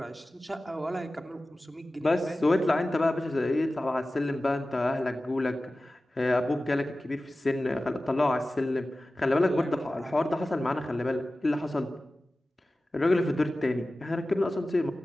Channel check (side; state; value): both; normal; correlation 0.96